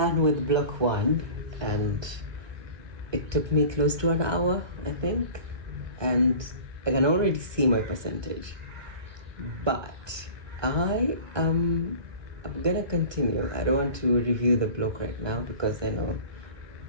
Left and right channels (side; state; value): left; late; 1.2 ms